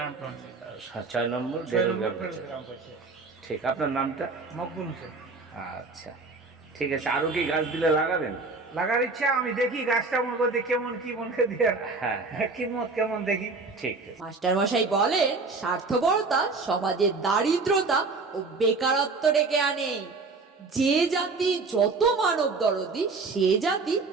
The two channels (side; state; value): left; quieter; 3.9 dB